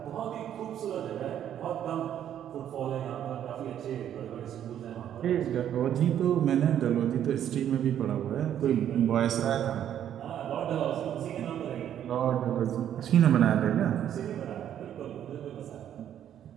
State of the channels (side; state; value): left; quieter; 10.3 dB